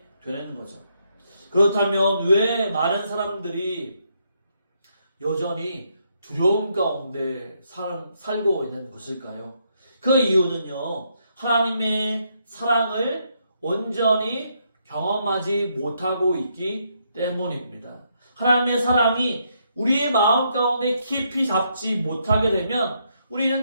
되는 거죠. 그렇다면 왜 많은 사람들이 여전히 두려움 가운데 살고 있는 것일까요? 그 이유는요, 하나님의 사랑을 온전히 경험하지 못하고 있기 때문입니다. 하나님의 사랑이 우리의 마음 가운데 깊이 잡지 못하게 되면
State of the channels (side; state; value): both; inverted; correlation -0.76